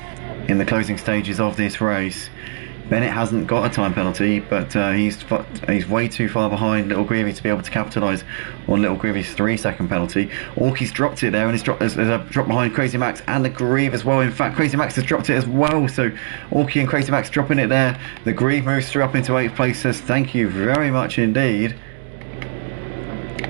in the closing stages of this race. Bennett hasn't got a time penalty, but he's way too far behind Little Greavy to be able to capitalise on Little Greavy's 3-second penalty. Orky's dropped it there, and he's dropped behind Crazy Max and the Grieve as well. In fact, Crazy Max has dropped it as well, so Orky and Crazy Max dropping it there. The Grieve moves through up into 8th place, says thank you very much indeed.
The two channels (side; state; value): left; silent; digital silence